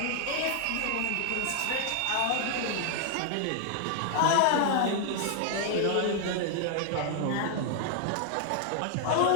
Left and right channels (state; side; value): different; both; correlation 0.00